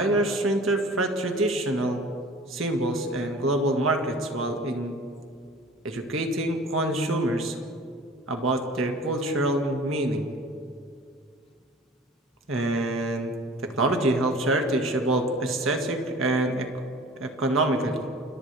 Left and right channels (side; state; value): both; normal; correlation 0.44